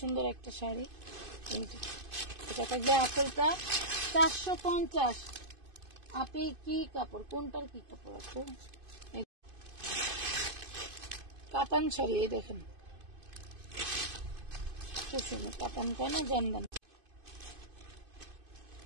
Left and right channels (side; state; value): left; late; 2.5 ms